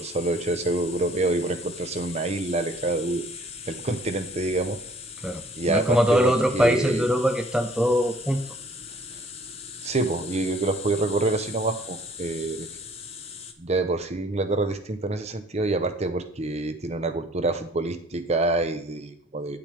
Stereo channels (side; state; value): both; normal; correlation 0.56